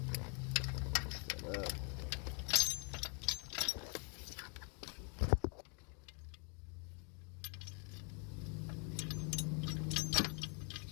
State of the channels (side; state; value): right; quieter; 36.6 dB